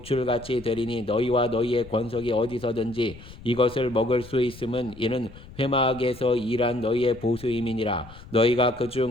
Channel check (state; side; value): noise; left; rumble, 18 dB below the sound